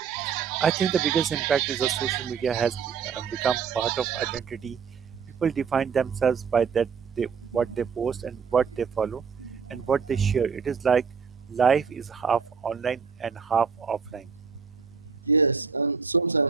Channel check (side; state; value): left; quieter; 6.1 dB